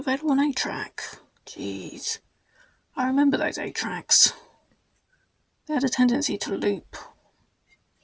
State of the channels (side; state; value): both; identical; correlation 1.00